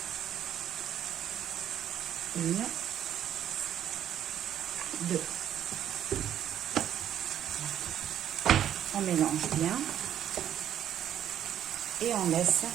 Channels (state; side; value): quieter; left; 10.4 dB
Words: Une, 2. On mélange bien et on laisse